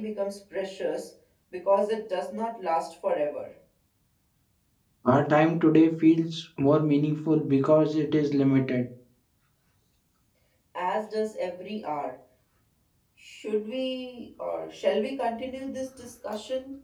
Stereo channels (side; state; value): both; identical; correlation 1.00